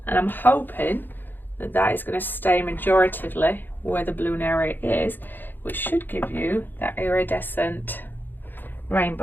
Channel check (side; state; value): right; late; 0.092 ms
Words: and I'm hoping that that is going to stay majoritively where the blue area is, which should give you that iridescent